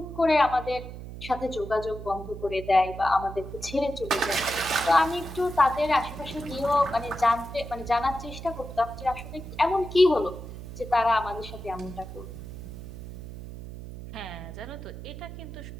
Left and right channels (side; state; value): right; noise; hum, 11 dB below the sound